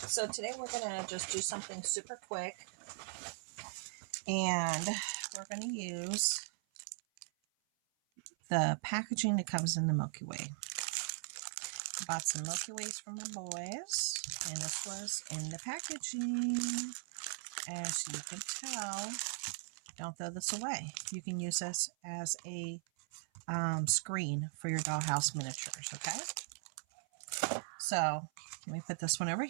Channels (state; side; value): silent; left; 52 dB below the other